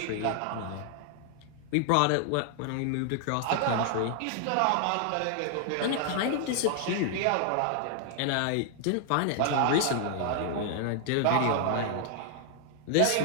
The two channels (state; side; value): different; both; correlation 0.00